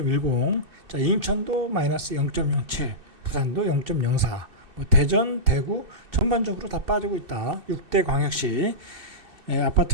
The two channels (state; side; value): late; left; 2.6 ms